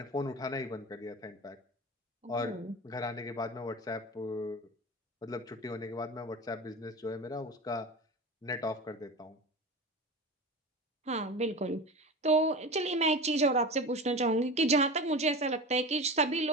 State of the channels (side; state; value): both; normal; correlation 0.29